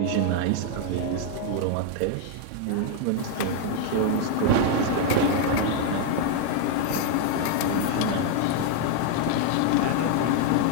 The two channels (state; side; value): different; both; correlation 0.00